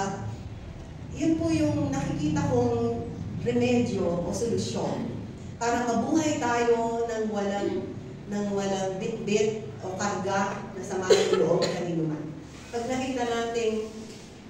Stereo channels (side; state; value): both; identical; correlation 1.00